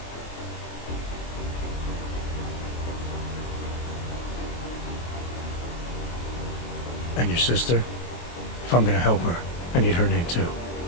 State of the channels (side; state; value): right; late; 23 ms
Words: And your sister? If I'm gonna help her, I need her name too.